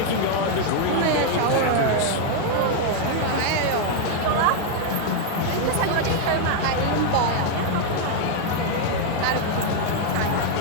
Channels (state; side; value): different; both; correlation 0.00